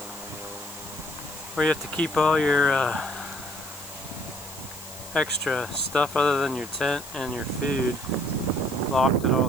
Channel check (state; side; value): noise; left; hiss, 15 dB below the sound